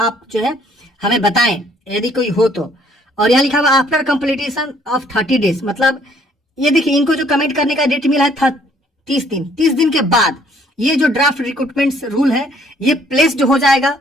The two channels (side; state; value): both; normal; correlation 0.63